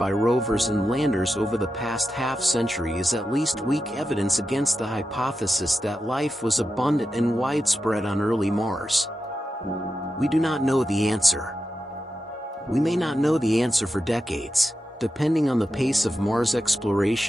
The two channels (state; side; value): normal; both; correlation 0.90